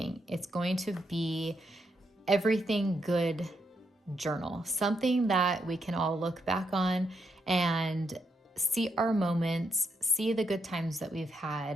It's going to be everything good journal, something that we can all look back on and see our moments, see the good times that we've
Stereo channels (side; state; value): both; normal; correlation 0.79